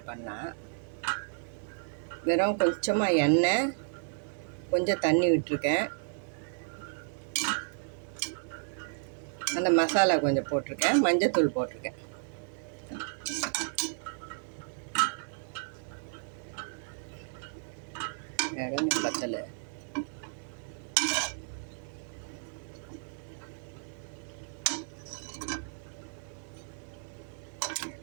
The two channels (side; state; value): left; silent; digital silence